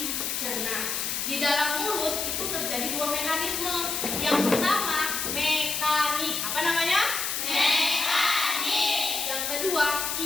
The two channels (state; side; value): noise; left; hiss, 1 dB below the sound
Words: Di dalam mulut itu terjadi dua mekanisme. Yang pertama mekanik, apa namanya? Mekanik. Yang kedua